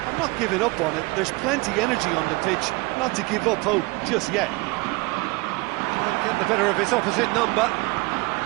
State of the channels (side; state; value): left; quieter; 24.6 dB